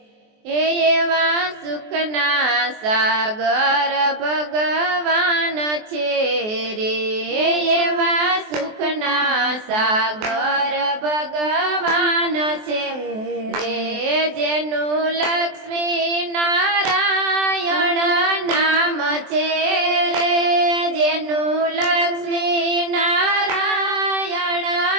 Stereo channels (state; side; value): late; left; 23 ms